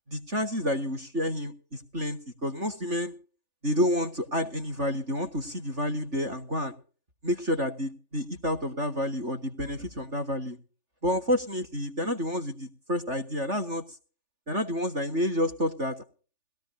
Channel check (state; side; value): late; left; 3.4 ms